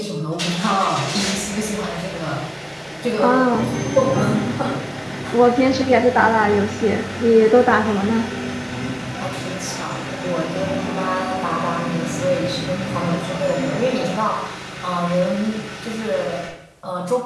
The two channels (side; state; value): both; identical; correlation 1.00